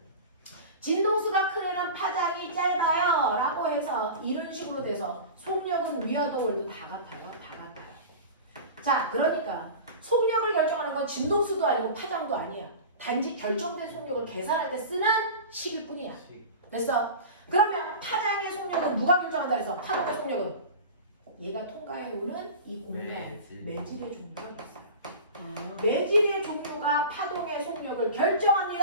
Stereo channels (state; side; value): inverted; both; correlation -0.33